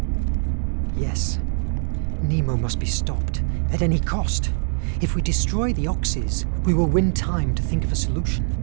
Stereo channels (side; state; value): left; silent; 63 dB below the other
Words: Yes. Nemo must be stopped, at any cost. If we destroy the oxys, we will win time to think of a solution.